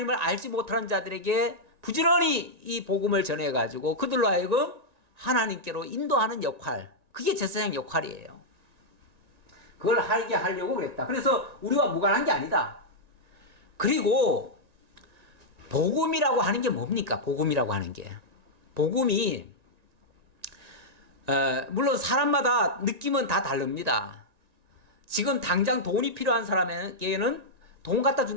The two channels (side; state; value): left; late; 1.9 ms